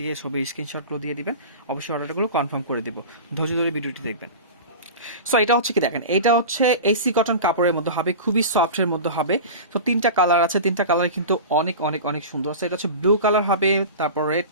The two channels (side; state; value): both; inverted; correlation -0.31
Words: ছবির স্ক্রিনশটগুলো দিয়ে দিবেন। অবশ্যই অর্ডারগুলো কনফার্ম করে দিব। ধৈর্য ধরে ভিডিওটি দেখবেন। সো এটা হচ্ছে কি দেখেন, এটা হচ্ছে এসি কটন কাপড়ের মধ্যে হবে, খুবই সফটের মধ্যে হবে। তো তিনটা কালার আছে, তিনটা কালার কিন্তু অনেক অনেক অনেক সুন্দর। সো এটা হচ্ছে ব্লু কালার হবে, তারপর রেড